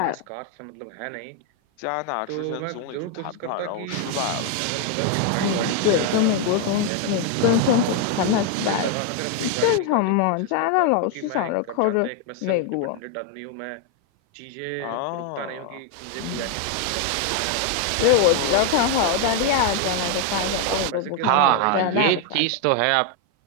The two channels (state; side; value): different; both; correlation 0.01